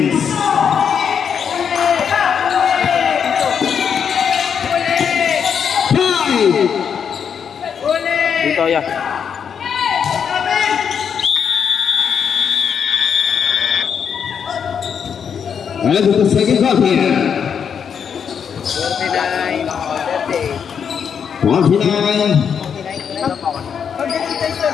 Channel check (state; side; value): quieter; right; 7.3 dB